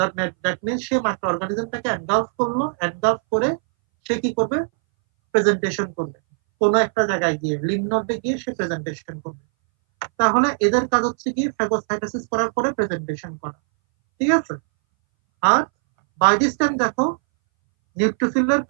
মিন্স সে মাইক্রো অর্গানিজমটাকে এনগালফ করলো, এনগালফ করে সে কি করবে, প্রেজেন্টেশন করবে কোনো একটা জায়গায় গিয়ে, লিম্ফ নোডে গিয়ে সে প্রেজেন্টেশন করবে। তাহলে এদের কাজ হচ্ছে গিয়ে ফ্যাগোসাইটোসিস করার পরে প্রেজেন্টেশন করা, ঠিক আছে। আর বাই দিস টাইম দেখো নিউট্রোফিলের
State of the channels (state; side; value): silent; left; 62 dB below the other